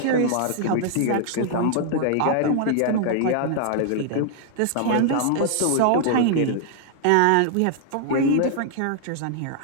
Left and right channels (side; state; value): both; different; correlation 0.00